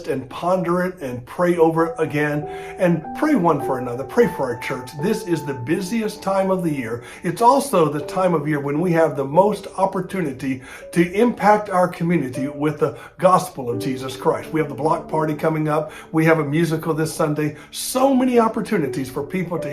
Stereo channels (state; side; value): identical; both; correlation 1.00